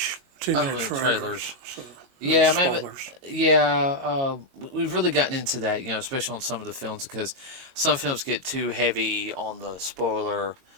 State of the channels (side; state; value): left; late; 22 ms